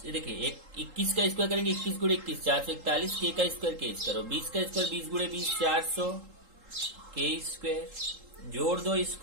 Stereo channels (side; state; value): left; late; 3.8 ms